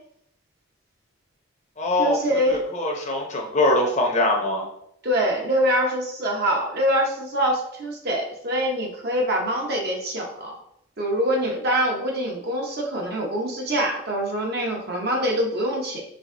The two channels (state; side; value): normal; both; correlation 0.15